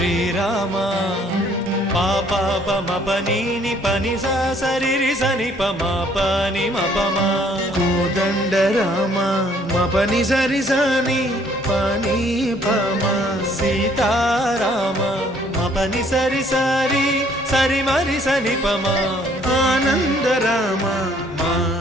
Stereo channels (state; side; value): normal; both; correlation 0.62